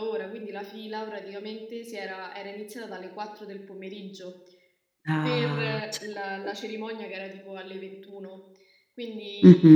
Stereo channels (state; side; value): identical; both; correlation 1.00